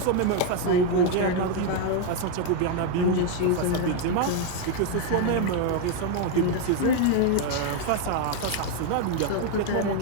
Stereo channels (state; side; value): different; both; correlation 0.01